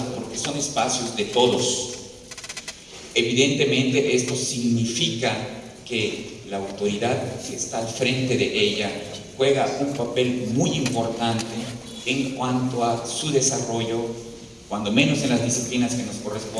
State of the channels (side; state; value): both; identical; correlation 1.00